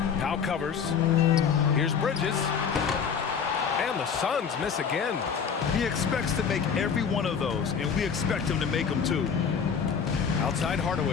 Now covers. Here's Bridges. And the Suns miss again. He expects to make every one of those, and we expect him to make them too. Outside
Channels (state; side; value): quieter; right; 6.7 dB